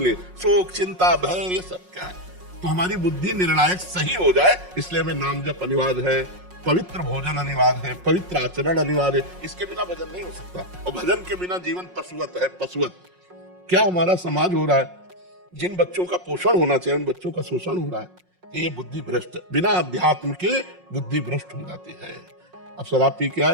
शोक चिंता भय ये सब क्या है, तो हमारी बुद्धि निर्णायक सही हो जाए, इसलिए हमें नाम जप अनिवार्य है, पवित्र भोजन अनिवार्य है, पवित्र आचरण अनिवार्य है, इसके बिना भजन नहीं हो सकता। और भजन के बिना जीवन पशुवत है, पशुवत। क्या हमारा समाज हो रहा है, जिन बच्चों का पोषण होना चाहिए उन बच्चों का शोषण हो रहा है, ये बुद्धि भ्रष्ट, बिना अध्यात्म के बुद्धि भ्रष्ट हो जाती है। अब शराब पी के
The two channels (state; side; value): late; left; 5.5 ms